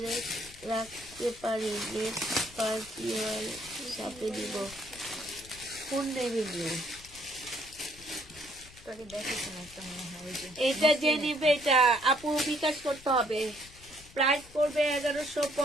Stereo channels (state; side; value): noise; left; rumble, 21 dB below the sound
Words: রাখতে পারি? নেক্সট পার্টি সাথে দিব। কোন নেভি ব্লু? এটা যে নিবে এটা আপু বিকাশ করতে হবে। প্রাইস পড়বে